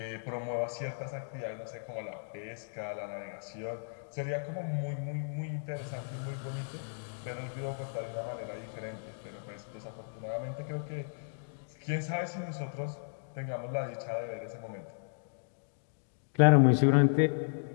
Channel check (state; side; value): silent; right; digital silence